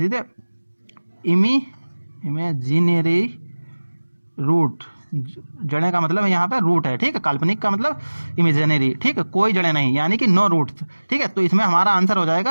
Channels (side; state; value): both; inverted; correlation -1.00